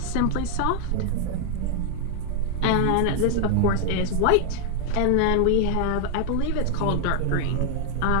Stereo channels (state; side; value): different; both; correlation 0.00